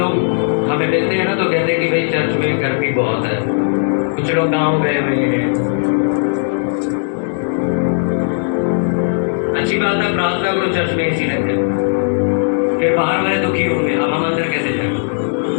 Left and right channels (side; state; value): right; silent; digital silence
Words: हमें मिलते हैं ना, तो कहते हैं कि भाई चर्च में गर्मी बहुत है। कुछ लोग गाँव गए हुए हैं, अच्छी बात है, प्रार्थना करो, चर्च में एसी लगे, फिर बाहर वाले दुखी होंगे, अब हम अंदर कैसे जाएंगे,